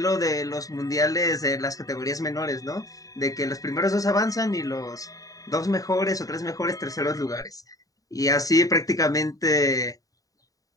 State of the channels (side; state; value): right; late; 0.17 ms